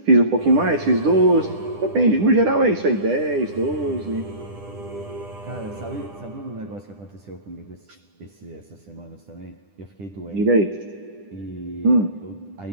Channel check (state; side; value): late; left; 10 ms